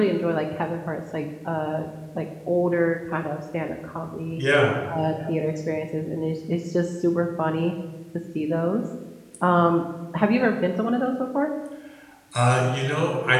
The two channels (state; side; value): identical; both; correlation 1.00